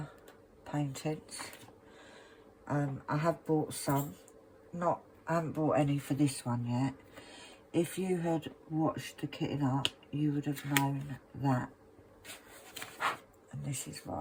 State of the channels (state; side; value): identical; both; correlation 1.00